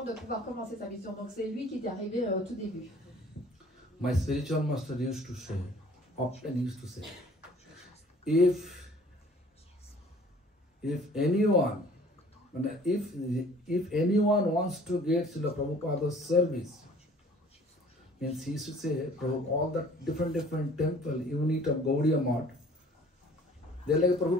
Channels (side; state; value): both; normal; correlation 0.53